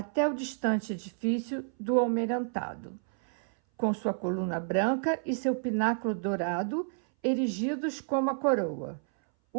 o distante edifício do Almirantado, com sua coluna branca e seu pináculo dourado erigidos como a coroa,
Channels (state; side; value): silent; left; 58 dB below the other